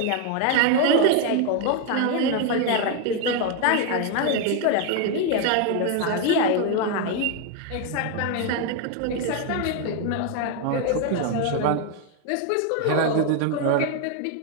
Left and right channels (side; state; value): both; different; correlation 0.01